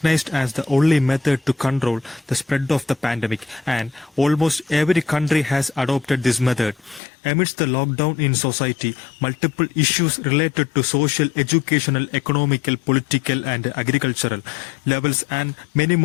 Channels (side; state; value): right; drops out; at 7.0 s